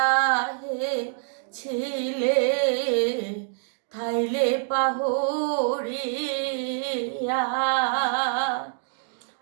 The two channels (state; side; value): silent; left; digital silence